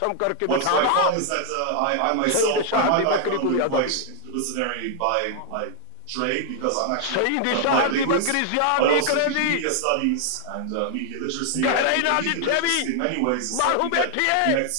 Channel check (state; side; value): different; both; correlation 0.00